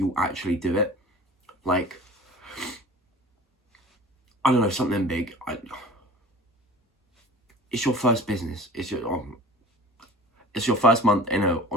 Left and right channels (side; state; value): both; normal; correlation 0.41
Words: actually do it, like, I don't know, something big. It's your first business. It's your first month in an